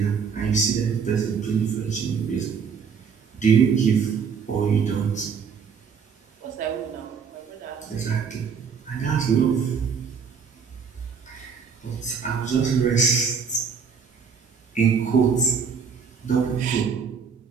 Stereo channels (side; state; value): left; quieter; 6.3 dB